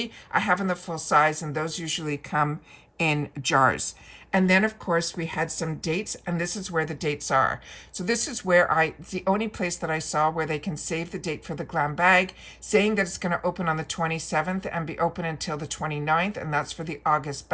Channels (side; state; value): both; identical; correlation 1.00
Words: I have in the full size, and those usually come in jars. And then, of course, we had some dates, and this is where the dates are. So this is where it's the only place that I saw where they can save the date for the glam bag, saying that it's going to open on the 27th and be open until the 29th, and that's for the August